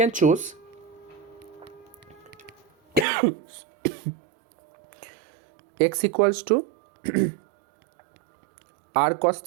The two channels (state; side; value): drops out; left; at 3.1 s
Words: choose x equals to r cos